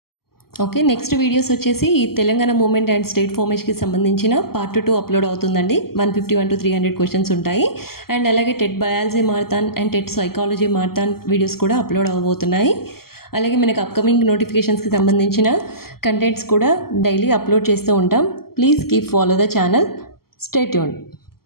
ఓకే, నెక్స్ట్ వీడియోస్ వచ్చేసి ఈ తెలంగాణ మూమెంట్ అండ్ స్టేట్ ఫార్మేషన్కి సంబంధించిన పార్ట్ 2 అప్లోడ్ అవుతుందండి. 151 to 300 క్వశ్చన్స్ ఉంటాయి. అండ్ అలాగే TET biology marathon and TET psychology marathon videos కూడా అప్లోడ్ అవ్వబోతున్నాయి. అలాగే మనకు అప్కమింగ్ నోటిఫికేషన్స్కి సంబంధించిన కంటెంట్స్ కూడా డైలీ అప్లోడ్ చేస్తూ ఉంటాం. Please keep follow the channel. Stay tuned.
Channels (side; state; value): right; late; 0.94 ms